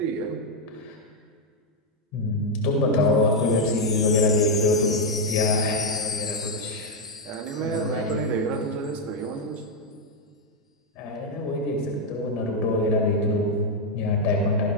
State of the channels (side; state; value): both; normal; correlation 0.00